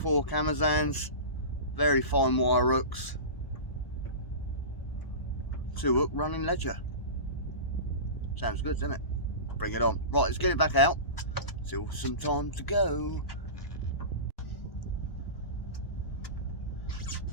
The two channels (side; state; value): right; late; 1.1 ms